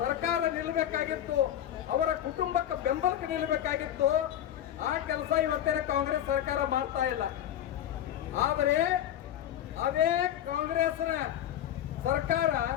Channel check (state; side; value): quieter; right; 11.1 dB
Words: ನಿಲ್ಲಬೇಕಾಗಿತ್ತು, ಅವರ ಕುಟುಂಬಕ್ಕೆ ಬೆಂಬಲಕ್ಕೆ ನಿಲ್ಲಬೇಕಾಗಿತ್ತು, ಆ ಕೆಲಸ ಇವತ್ತಿನ ಕಾಂಗ್ರೆಸ್ ಸರ್ಕಾರ ಮಾಡ್ತಾ ಇಲ್ಲ. ಆದರೆ ಅದೇ ಕಾಂಗ್ರೆಸ್ನ ಸರ್ಕಾರ